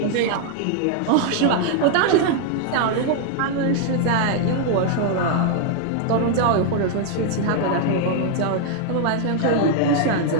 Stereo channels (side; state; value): both; different; correlation 0.00